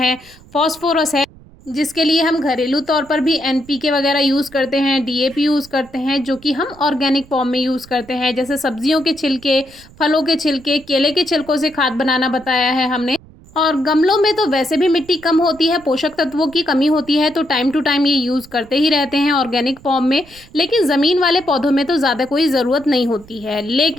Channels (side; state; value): right; noise; rumble, 23 dB below the sound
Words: फॉस्फोरस है, जिसके लिए हम घरेलू तौर पर भी एनपीके वगैरह यूज़ करते हैं, डीएपी यूज़ करते हैं, जो कि हम ऑर्गेनिक फॉर्म में यूज़ करते हैं। जैसे सब्जियों के छिलके, फलों के छिलके, केले के छिलकों से खाद बनाना बताया है हमने। और गमलों में तो वैसे भी मिट्टी कम होती है, पोषक तत्वों की कमी होती है, तो टाइम टू टाइम ये यूज़ करते ही रहते हैं ऑर्गेनिक फॉर्म में। लेकिन ज़मीन वाले पौधों में तो ज़्यादा कोई ज़रूरत नहीं होती है।